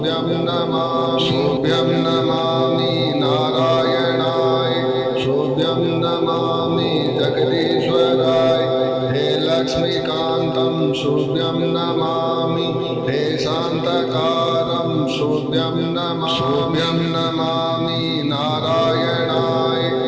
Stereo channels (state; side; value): identical; both; correlation 1.00